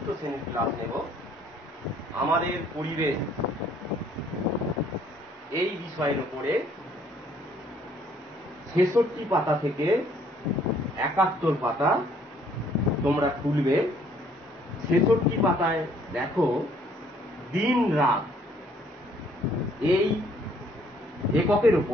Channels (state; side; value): normal; both; correlation 0.62